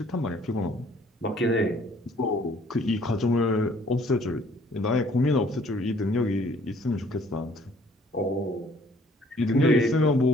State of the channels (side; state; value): both; normal; correlation 0.59